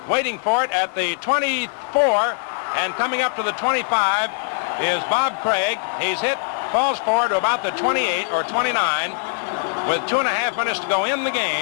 waiting for it at the 24. And coming up to the 25 is Bob Craig. He's hit, falls forward to about the 28 or 29. With 2.5 minutes to go in the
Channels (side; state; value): right; silent; digital silence